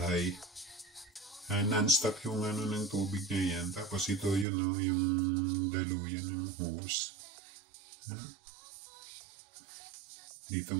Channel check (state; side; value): drops out; left; at 4.5 s